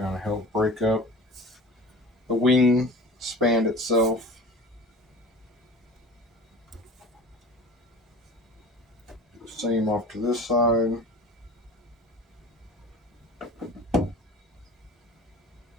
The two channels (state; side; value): normal; both; correlation 0.38